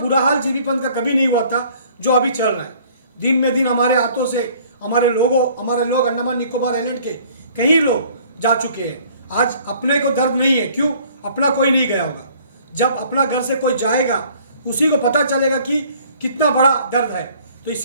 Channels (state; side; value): inverted; both; correlation -0.56